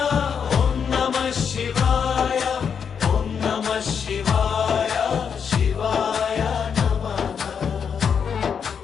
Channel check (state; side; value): quieter; right; 6.9 dB